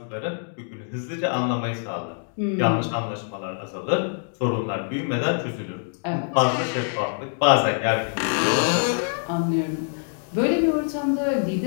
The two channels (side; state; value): right; silent; digital silence